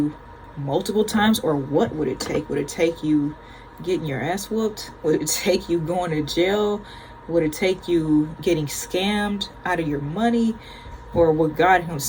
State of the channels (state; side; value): identical; both; correlation 1.00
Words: multiple times? Or what would it take? Would it take you getting your ass whooped? Would it take you going to jail? Would it take you getting scammed out of your money? Or would God